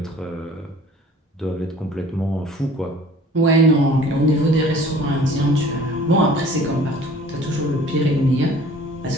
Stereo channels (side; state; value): both; normal; correlation 0.50